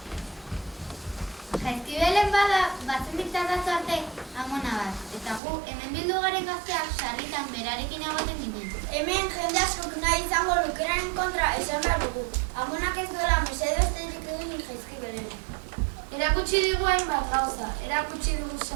Jaizkibelen bada, batzen diktatatu arte amona bat. Eta gu, hemen bildu garen gazteak sarritan berarekin egoten ginen. Hemen jende askok nahi izango lukeraren kontra esan behar dugu. Amonak ez duela mesedo esterik egin Jaizkibelen. Erakutsi digu hainbat gauza, erakutsi digu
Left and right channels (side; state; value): left; drops out; at 5.4 s